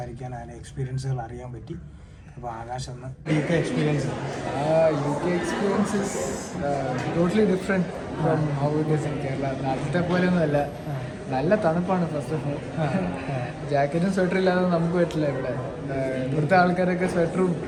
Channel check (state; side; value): identical; both; correlation 1.00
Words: അതിൻ്റെ എക്സ്പീരിയൻസുകൾ അറിയാൻ പറ്റി. അപ്പോൾ ആകാശ് ഒന്ന് UK experience totally different from how it is in Kerala. നാട്ടിലത്തെ പോലെയൊന്നുമല്ല. നല്ല തണുപ്പാണ്. ഫസ്റ്റ് ഓഫ് ഓൾ ജാക്കറ്റും സ്വെറ്ററും ഇല്ലാതെ നമുക്ക് പറ്റില്ല. ഇവിടുത്തെ ആൾക്കാരൊക്കെ സ്വെറ്ററും